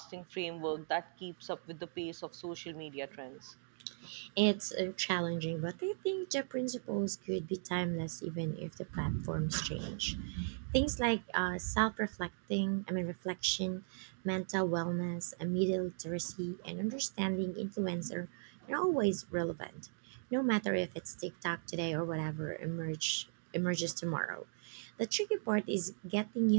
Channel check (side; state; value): left; silent; digital silence